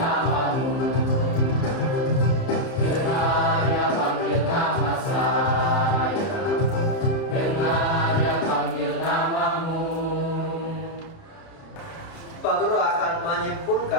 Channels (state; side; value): late; right; 30 ms